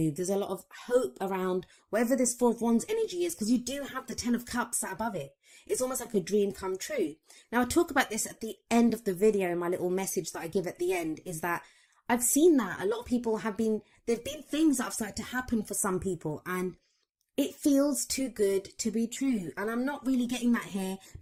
There's a lot of hope around wherever this Four of Wands energy is, because you do have the Ten of Cups sat above it. It's almost like a dream come true. Now, I talk about this at the end of the video. My little message that I give at the end is that I've seen that a lot of people there've been things that have started to happen for some people, and it feels too good to be true. And I'm not really getting that here,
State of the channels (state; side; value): identical; both; correlation 1.00